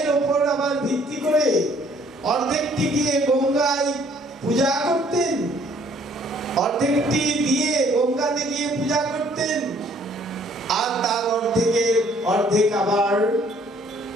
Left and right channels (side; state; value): both; normal; correlation 0.61